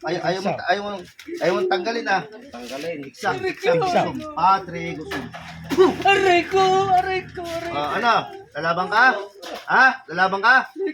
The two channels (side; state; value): both; identical; correlation 1.00